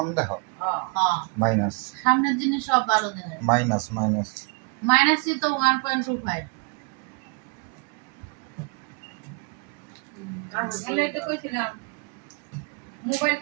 দেহ হ্যাঁ মাইনাস সামনের জিনিস সব ভালো দেখায়। মাইনাস মাইনাসই তো 1.25। আমি তো কইছিলাম মোবাইল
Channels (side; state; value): left; quieter; 34.1 dB